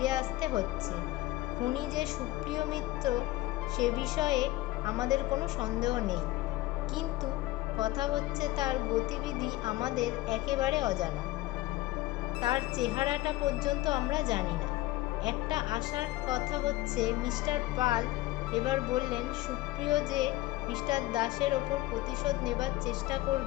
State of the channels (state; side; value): quieter; right; 17.7 dB